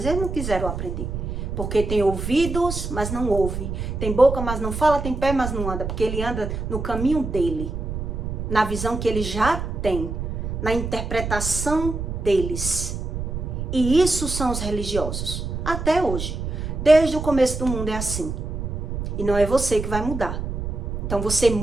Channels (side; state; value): right; noise; rumble, 4 dB below the sound